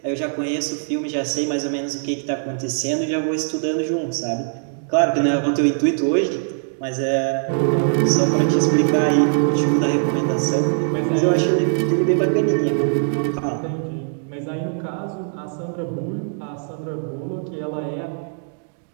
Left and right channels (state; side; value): silent; left; digital silence